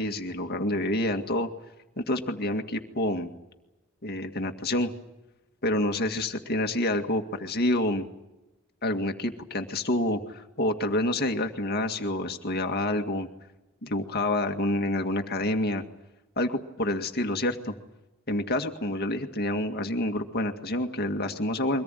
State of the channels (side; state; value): both; normal; correlation 0.31